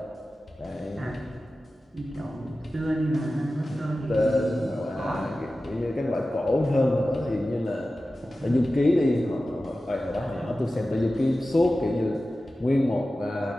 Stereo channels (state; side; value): normal; both; correlation 0.95